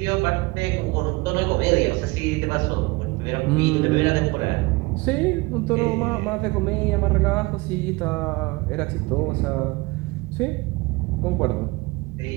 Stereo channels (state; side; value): quieter; left; 23.6 dB